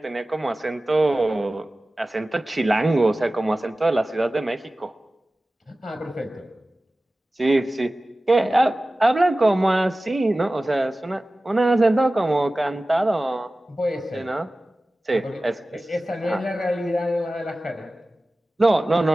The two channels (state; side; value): normal; both; correlation 0.96